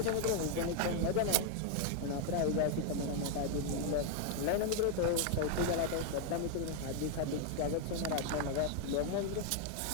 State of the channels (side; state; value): both; different; correlation 0.00